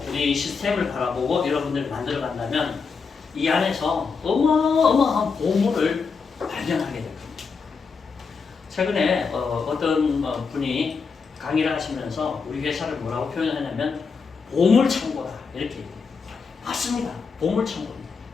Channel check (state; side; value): quieter; right; 5.2 dB